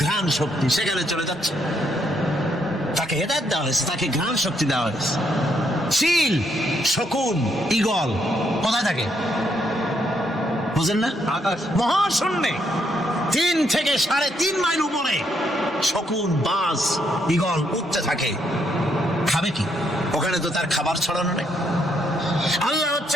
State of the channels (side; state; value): both; normal; correlation 0.74